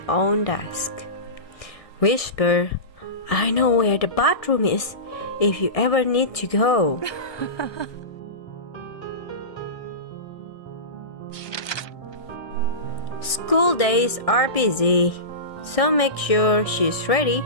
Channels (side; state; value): right; late; 1.6 ms